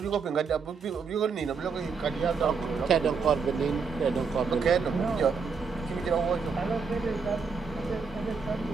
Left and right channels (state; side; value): quieter; left; 5.3 dB